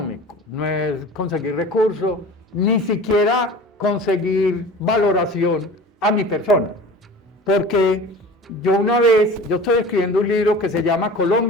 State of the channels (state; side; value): normal; both; correlation 0.39